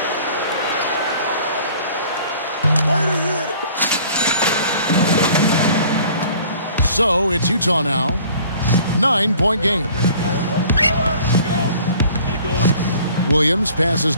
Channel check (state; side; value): inverted; both; correlation -0.51